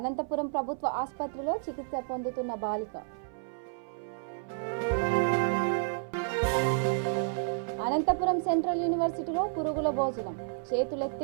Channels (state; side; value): silent; left; 57 dB below the other